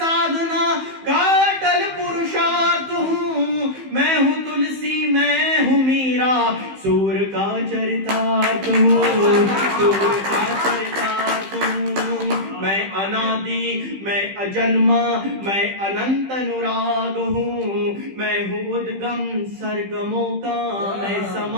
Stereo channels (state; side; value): late; left; 15 ms